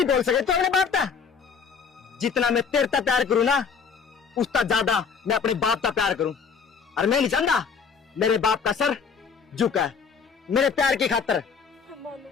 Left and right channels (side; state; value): right; quieter; 6.0 dB